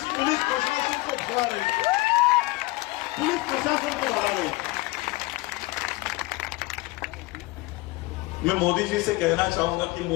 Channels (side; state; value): right; quieter; 21.5 dB